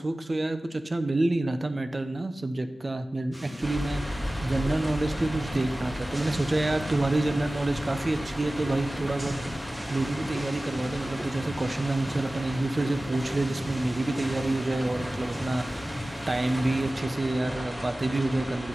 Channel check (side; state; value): both; normal; correlation 0.97